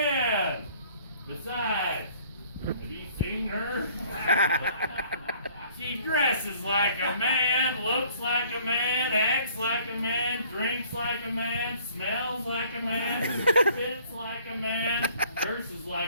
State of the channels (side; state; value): both; inverted; correlation -0.57